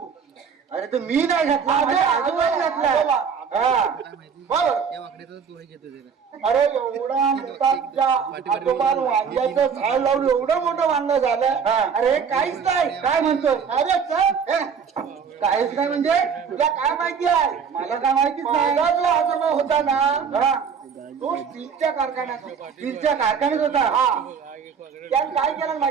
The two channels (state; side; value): quieter; left; 6.5 dB